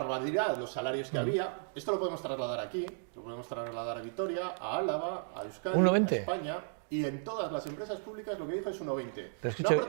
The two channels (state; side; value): silent; left; digital silence